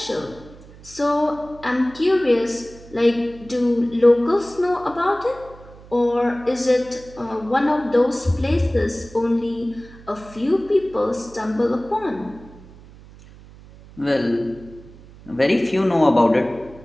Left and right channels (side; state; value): right; noise; hum, 21 dB below the sound